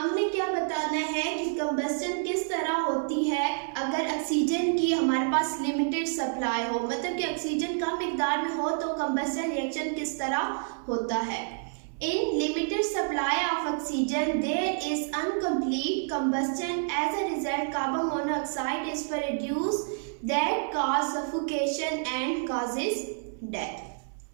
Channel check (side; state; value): left; silent; 59 dB below the other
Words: क्या बताना है कि कंबस्शन किस तरह होती है अगर ऑक्सीजन की हमारे पास लिमिटेड सप्लाई हो, मतलब कि ऑक्सीजन कम मिकदार में हो तो कंबस्शन रिएक्शन किस तरह होता है। In limited supply of oxygen there is incomplete combustion, as a result carbon monoxide is produced that cause suffocation and causes death.